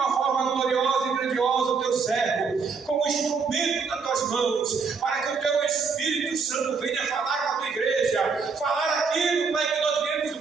forma gloriosa e grandiosa o teu servo, como instrumento das tuas mãos, para que o teu Espírito Santo venha falar com a tua igreja, falar aquilo, Pai, que nós viemos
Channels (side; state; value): left; quieter; 5.1 dB